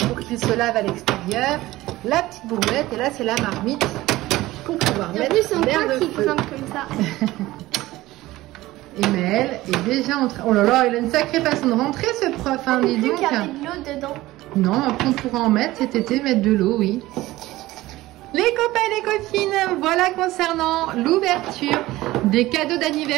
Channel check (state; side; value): quieter; left; 17.5 dB